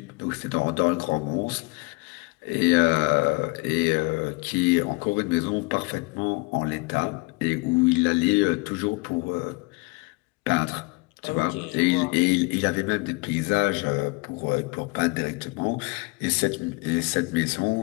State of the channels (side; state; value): right; quieter; 26.8 dB